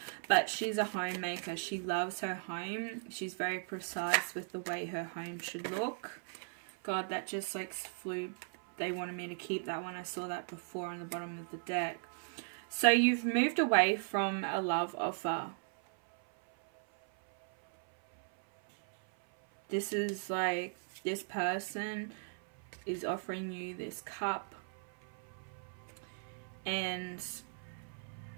but she's a homemaker. She loves her home. She's very precise with the way her home should look. God, that just like flew. They wanted me to keep that one. I saw that before on the bottom of the deck. So you've moved away from a love offer. This is like, this person is offering you this cup, and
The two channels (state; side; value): silent; left; 53 dB below the other